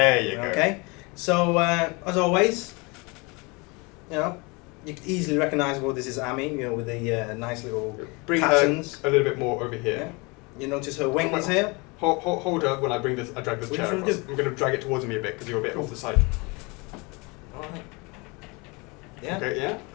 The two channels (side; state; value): right; quieter; 27.8 dB